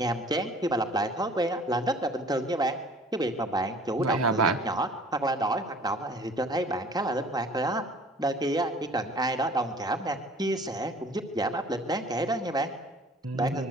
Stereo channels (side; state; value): both; normal; correlation 0.50